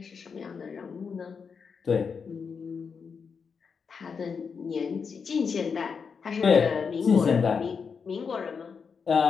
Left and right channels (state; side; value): quieter; right; 5.8 dB